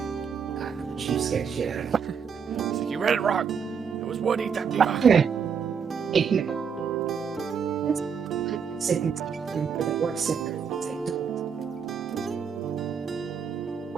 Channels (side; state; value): left; quieter; 6.7 dB